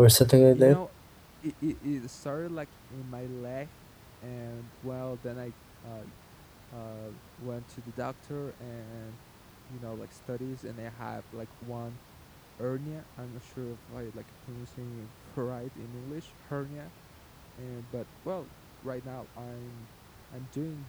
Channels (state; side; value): identical; both; correlation 1.00